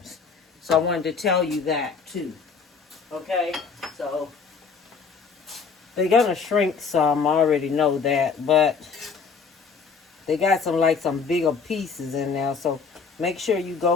So I wanted to tell you that too. Okay? So they're going to shrink some. I already know that. But they got some bigger pieces in there. So make sure you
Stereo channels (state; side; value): quieter; right; 5.4 dB